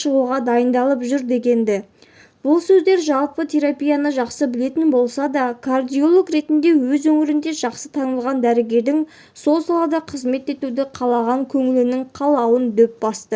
дайындалып жүр дегенді. Бұл сөздер жалпы терапияны жақсы білетін болса да, кардиолог ретінде өз өңірінде жақсы танылған дәрігердің сол салада қызмет етуді қалаған көңілінің қалауын дөп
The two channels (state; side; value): identical; both; correlation 1.00